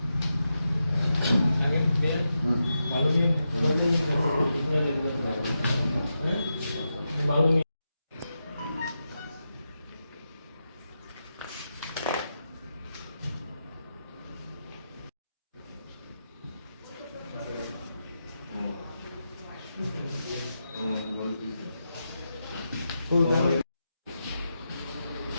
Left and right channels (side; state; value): both; inverted; correlation -0.88